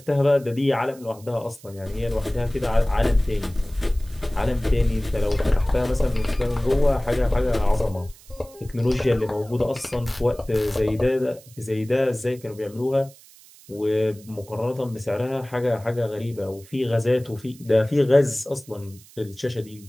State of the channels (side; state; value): right; noise; hiss, 23 dB below the sound